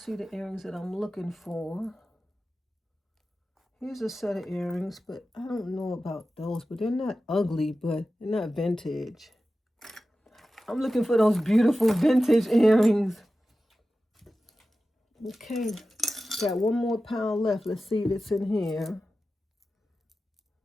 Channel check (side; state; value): both; normal; correlation 0.94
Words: the earrings that I'm looking for. Here's a set of earrings, but I don't know about those. But they're not ugly, but they're not vintage. I'm looking for those beautiful vintage earrings. Okay. Got one more pound left. Let's see if it's in here.